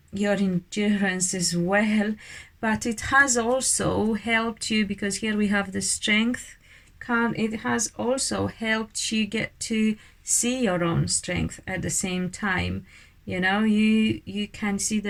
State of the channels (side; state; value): both; identical; correlation 1.00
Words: your endurance as well. But it has also helped you, because here we have the strength card. It has also helped you get to see your own strength at the same time. You know, you can see